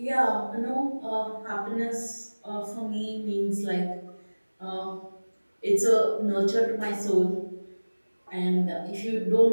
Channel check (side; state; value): both; inverted; correlation -1.00